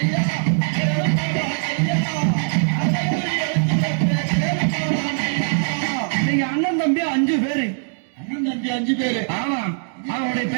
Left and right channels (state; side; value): silent; left; digital silence